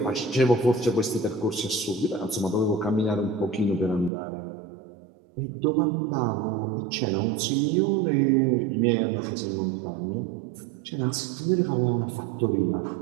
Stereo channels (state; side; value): drops out; left; at 4.1 s